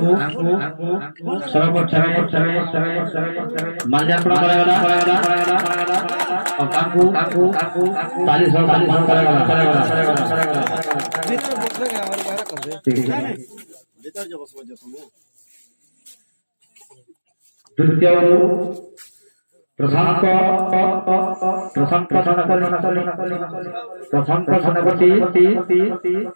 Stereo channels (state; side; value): inverted; both; correlation -1.00